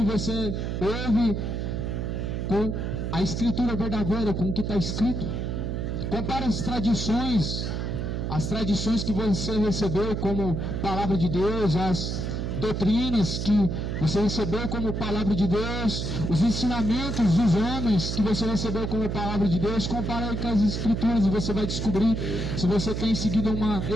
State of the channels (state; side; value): noise; right; hum, 2 dB below the sound